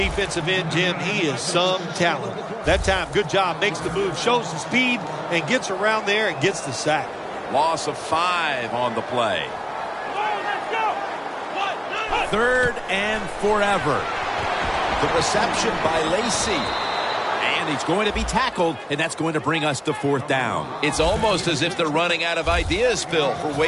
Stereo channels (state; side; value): identical; both; correlation 1.00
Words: end, Jim, he is some talent. That time, good job, makes the move, shows the speed, and gets around there and gets the sack. Loss of 5 on the play. 3rd and forever. The reception by Lacy. And he's going to be tackled, and that's going to bring us to 4th down. It's almost as if they're running out of ideas, Phil, for